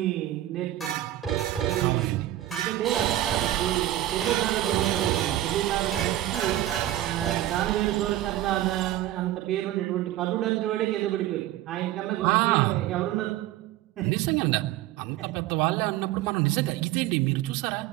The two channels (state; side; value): quieter; left; 14.1 dB